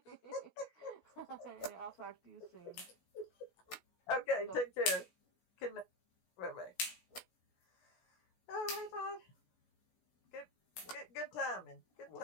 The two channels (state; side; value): late; right; 17 ms